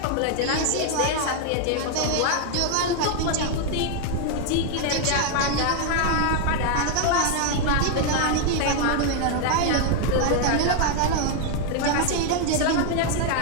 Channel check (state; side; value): different; both; correlation 0.00